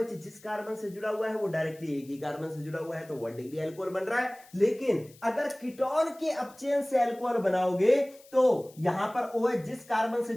जिस कार्बन से जुड़ा हुआ है वो डायरेक्टली एक ही कार्बन से जुड़ा हुआ है, तो 1 डिग्री अल्कोहल बन रहा है। लेकिन अगर कीटोन के अपचयन से अल्कोहल बनाओगे तो यहां पर OH जिस कार्बन से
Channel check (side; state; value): left; noise; hiss, 25 dB below the sound